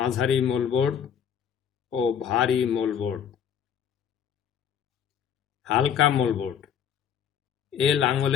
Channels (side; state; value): right; quieter; 8.3 dB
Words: মোলবোর্ড ও ভারী মোলবোর্ড। হালকা মোলবোর্ড এ